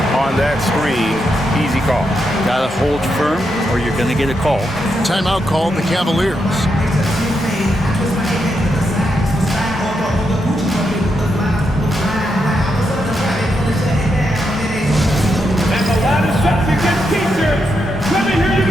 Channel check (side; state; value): both; normal; correlation 0.83